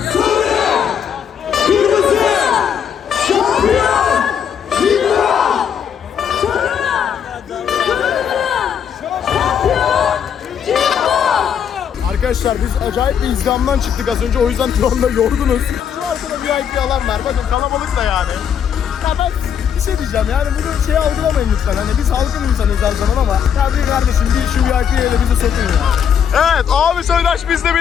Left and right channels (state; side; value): quieter; right; 8.1 dB